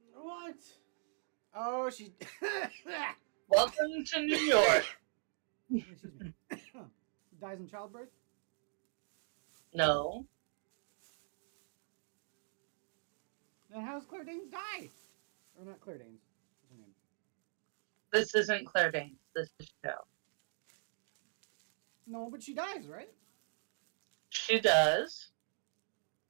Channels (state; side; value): silent; left; digital silence